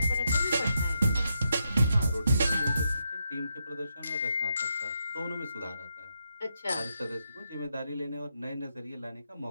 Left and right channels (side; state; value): both; inverted; correlation -0.82